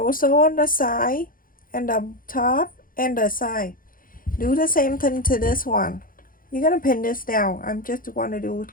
sew on the side and the top and the side. Do the same thing to this one. You're gonna pin this down. I'm just want to do it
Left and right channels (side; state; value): right; late; 0.41 ms